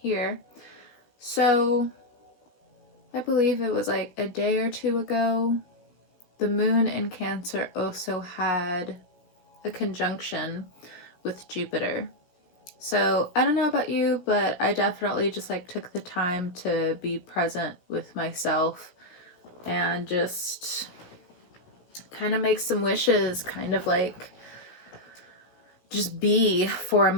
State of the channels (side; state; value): right; late; 16 ms